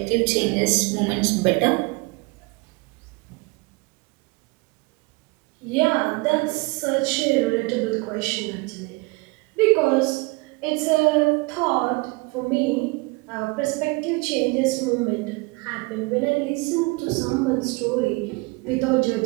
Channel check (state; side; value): quieter; left; 26.2 dB